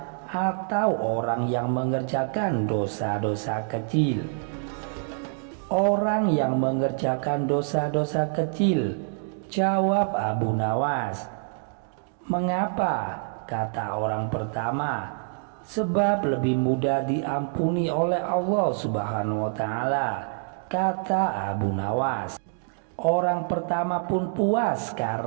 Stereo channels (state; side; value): silent; left; digital silence